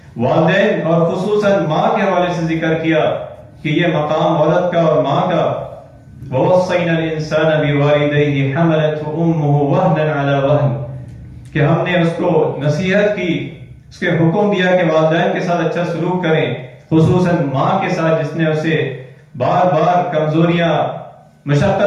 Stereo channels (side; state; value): both; identical; correlation 1.00